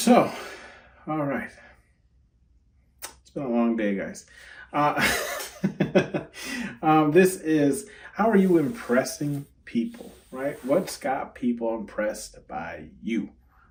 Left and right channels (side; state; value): both; identical; correlation 1.00